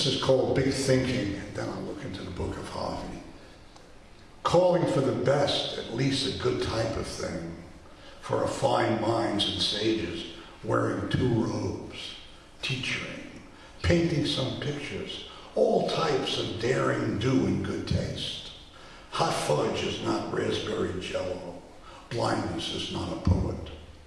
is called Big Thinking, and then I'll look into the book of Harvey. Calling for the best, at least a good type of thing, for refined minds and sages, wearing 2 robes, teaching, painting some pictures, all types of daring do in good taste. Hot fudge is not raspberry jello. Blindness is not a poet.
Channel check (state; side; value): identical; both; correlation 1.00